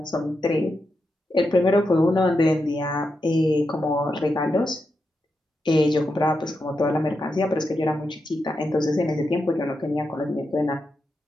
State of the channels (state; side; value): normal; both; correlation 0.86